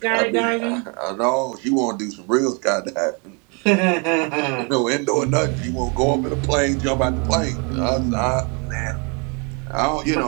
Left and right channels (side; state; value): left; quieter; 33.6 dB